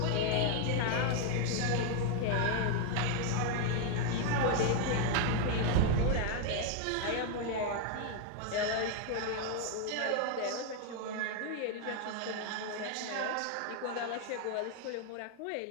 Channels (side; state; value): both; different; correlation 0.01